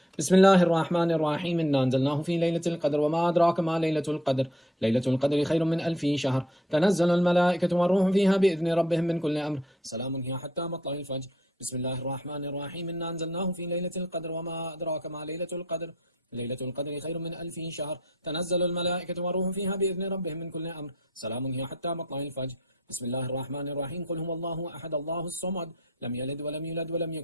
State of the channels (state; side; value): normal; both; correlation 0.62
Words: بسم الله الرحمن الرحيم. إنا أنزلناه في ليلة القدر وما أدراك ما ليلة القدر. ليلة القدر خير من 1000 شهر. تنزل الملائكة والروح فيها بإذن ربهم من كل أمر. سلام هي حتى مطلع الفجر. بسم الله الرحمن الرحيم. إنا أنزلناه في ليلة القدر وما أدراك ما ليلة القدر. ليلة القدر خير من 1000 شهر. تنزل الملائكة والروح فيها بإذن ربهم من كل أمر. سلام هي حتى مطلع الفجر. بسم الله الرحمن الرحيم. قل هو الله أحد الله الصمد لم يلد ولم يولد ولم